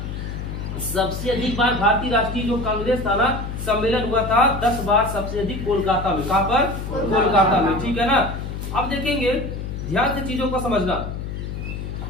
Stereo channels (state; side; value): noise; left; hum, 6 dB below the sound